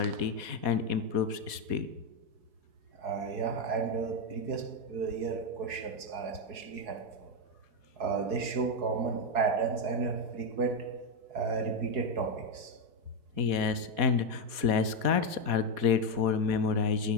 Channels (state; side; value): late; left; 4.2 ms